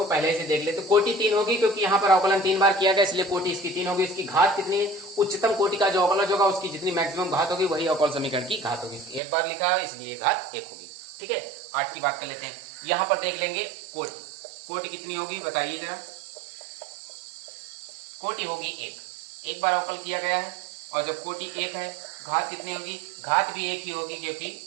पहले से देख लेते हैं। कोटि 3 होगी क्योंकि यहाँ पर अवकलन 3 बार किया गया, इसलिए कोटि इसकी 3 होगी। इसकी घात कितनी है, उच्चतम कोटि का जो अवकलज होगा उसकी जितनी मैक्सिमम घात होगी वही अवकल समीकरण की घात होगी। एक बार लिखा है इसलिए घात 1 होगी। ठीक है, 8 की बात कर लेते हैं। यहाँ पर देख लेंगे कोटि, कोटि कितनी होगी बताइए जरा। कोटि होगी 1, एक बार अवकल किया गया है। और जब कोटि 1 है, घात कितनी होगी, घात भी 1 ही होगी क्योंकि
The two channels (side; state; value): left; drops out; at 9.2 s